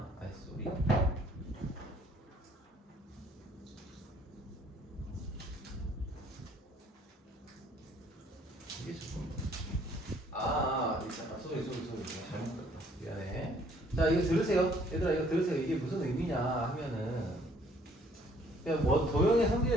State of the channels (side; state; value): both; normal; correlation 0.61